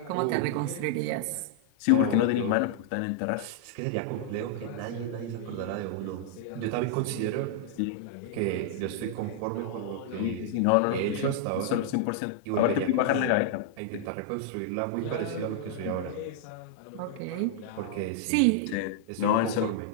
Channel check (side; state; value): both; different; correlation -0.01